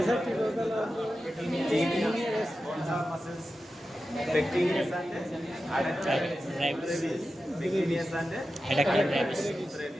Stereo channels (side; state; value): both; normal; correlation 0.92